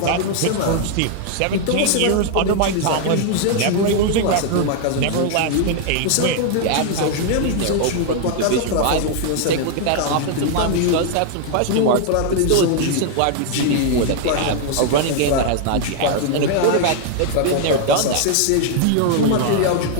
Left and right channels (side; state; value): both; different; correlation 0.00